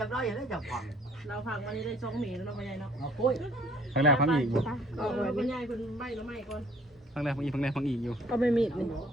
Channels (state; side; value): normal; both; correlation 0.58